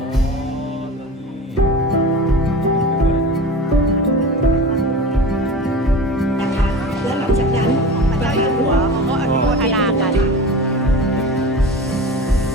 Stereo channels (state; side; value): normal; both; correlation 0.34